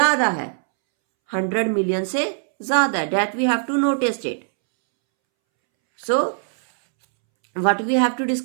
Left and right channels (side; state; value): left; silent; 65 dB below the other